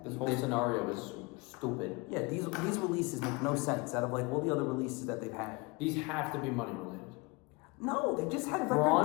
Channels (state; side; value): quieter; right; 26.3 dB